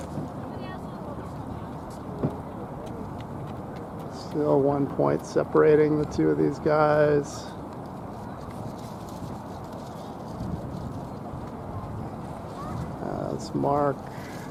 Still 1 point separating the two of these guys. That's Mark.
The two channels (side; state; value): both; identical; correlation 1.00